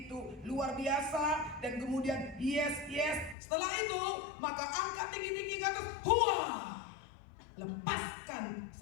itu luar biasa, dan kemudian yes yes. Setelah itu maka angkat tinggi-tinggi ke atas, huah. Lepaskan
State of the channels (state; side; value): drops out; right; at 3.4 s